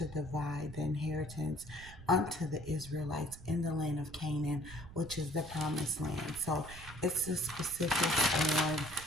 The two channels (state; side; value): noise; right; rumble, 15 dB below the sound